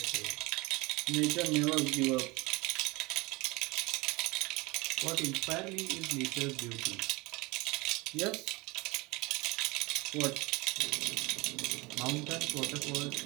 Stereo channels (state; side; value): quieter; left; 24.5 dB